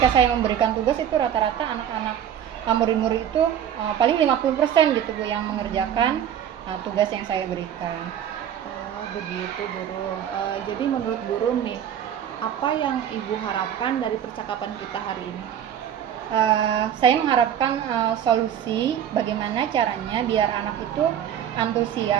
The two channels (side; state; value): left; quieter; 9.7 dB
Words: saya memberikan tugas itu rata-rata anak-anak murid-murid itu paling 50% gitu Bu yang mengerjakan tugas yang saya berikan. Oh, begitu, Burung. Jadi menurut Burung nih, apa yang Ibu harapkan dari percakapan kita hari ini? Saya mengharapkan solusi bagaimana caranya biar anak itu